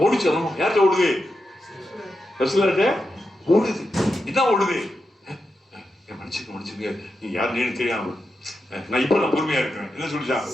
ஓடிச்சு? யார்கிட்ட ஓடுது? ரசூலுல்லாஹ்ட்ட ஓடுது. இதான் ஓடுது. மன்னிச்சுங்க நீ யாருன்னு தெரியாம நான் இப்ப பொறுமையா இருக்கிறேன். என்ன சொல்லிச்சான்?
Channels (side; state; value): both; normal; correlation 0.88